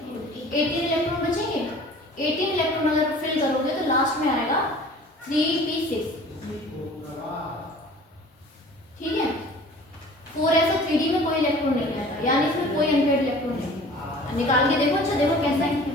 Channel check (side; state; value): both; normal; correlation 0.46